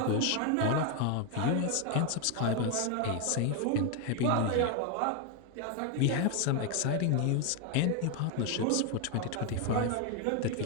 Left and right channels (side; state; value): both; different; correlation 0.01